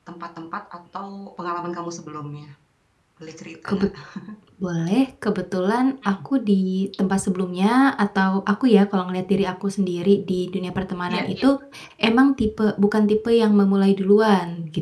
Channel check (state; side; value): identical; both; correlation 1.00